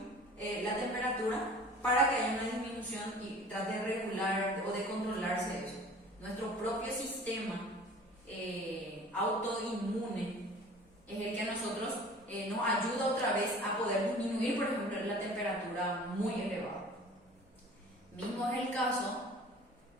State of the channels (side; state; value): both; normal; correlation 0.45